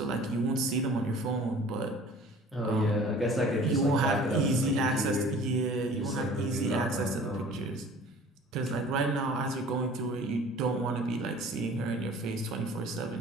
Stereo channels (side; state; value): both; normal; correlation 0.47